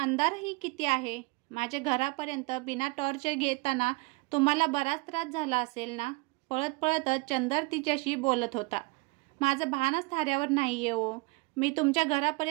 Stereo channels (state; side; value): quieter; left; 26.1 dB